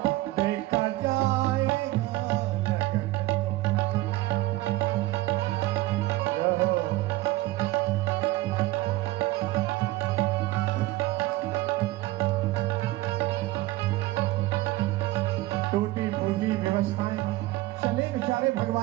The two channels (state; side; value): quieter; left; 18.2 dB